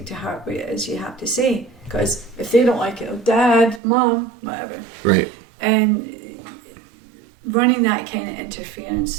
to heart what it is you have to say. Because if they don't like it, oh, Dad, Mom, whatever. Right. And running that kind of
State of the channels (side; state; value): left; drops out; at 3.8 s